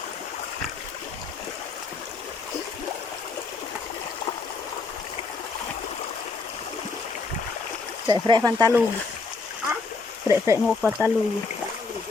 Fre pantalog. Fre mo pantalog.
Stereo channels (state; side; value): quieter; right; 4.2 dB